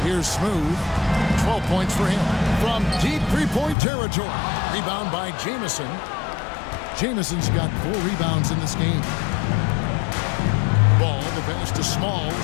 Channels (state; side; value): drops out; right; at 3.8 s